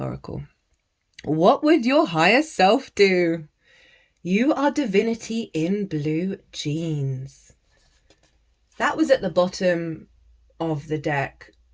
What would your higher self do? You are divinity in blue jeans. That was at the bottom of the deck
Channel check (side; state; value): both; identical; correlation 1.00